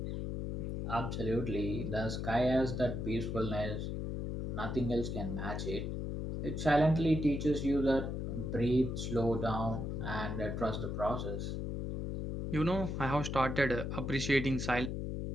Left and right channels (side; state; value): left; noise; hum, 3 dB below the sound